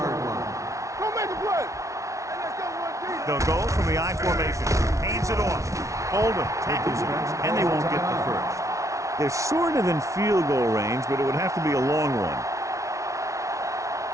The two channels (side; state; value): left; late; 0.15 ms